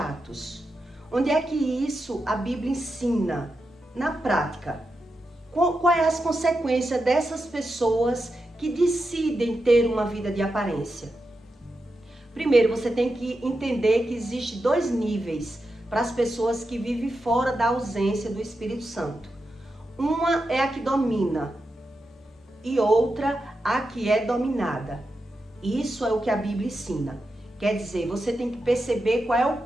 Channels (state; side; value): normal; both; correlation 0.88